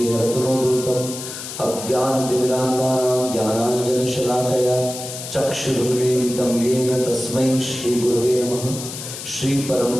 हरतुनोदृतम् अज्ञानतिमिरान्धानां ज्ञानाञ्जनशलाकया चक्षुरुन्मीलितं येन तस्मै श्रीगुरवे नमः। श्री परम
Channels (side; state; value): left; noise; hiss, 9 dB below the sound